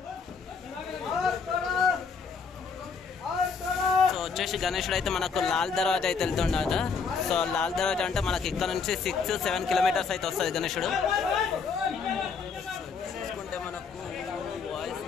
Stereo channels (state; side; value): quieter; right; 5.4 dB